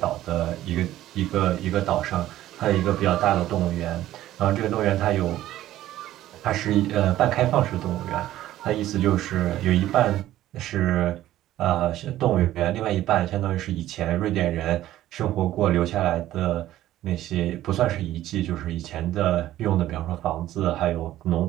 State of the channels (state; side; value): quieter; left; 14.0 dB